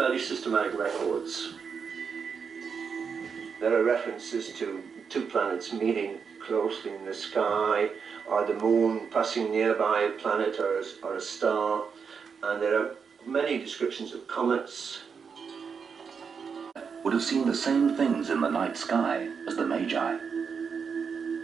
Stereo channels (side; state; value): left; quieter; 6.1 dB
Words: systematic records. There are references to two planets meeting closely in the sky, or the moon passing nearby a planet or a star, and there are many descriptions of comets. Would have seen the same things in the night sky as the Magi.